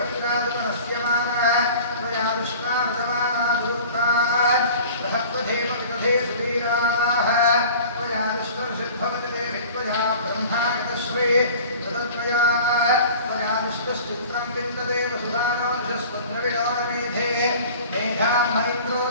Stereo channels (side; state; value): both; inverted; correlation -0.44